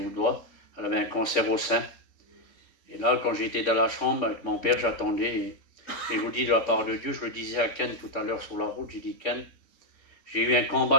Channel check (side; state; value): right; late; 3.5 ms